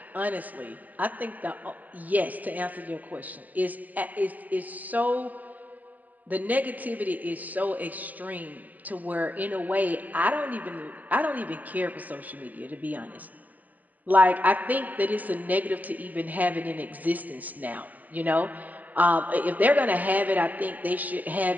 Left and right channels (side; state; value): left; late; 0.080 ms